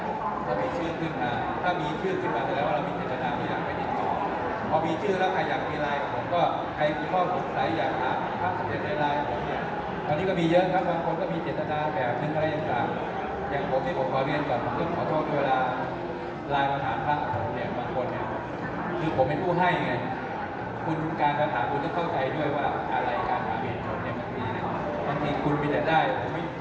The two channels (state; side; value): identical; both; correlation 1.00